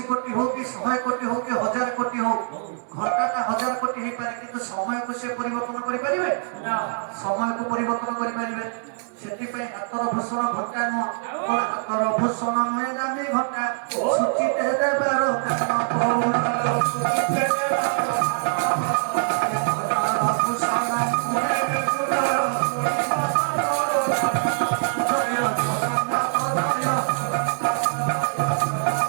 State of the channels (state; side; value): silent; left; digital silence